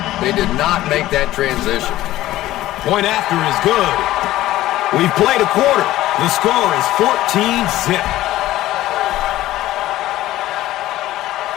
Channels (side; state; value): right; quieter; 15.3 dB